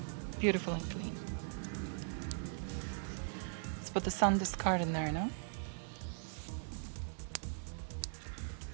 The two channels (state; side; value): silent; left; digital silence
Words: beautiful and clean. Let's put the SanDisk card in there now.